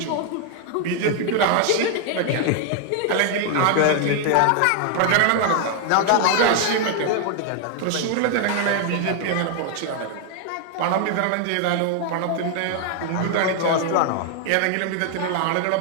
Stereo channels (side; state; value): both; different; correlation 0.00